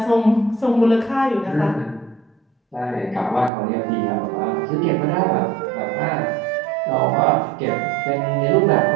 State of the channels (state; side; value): drops out; left; at 3.5 s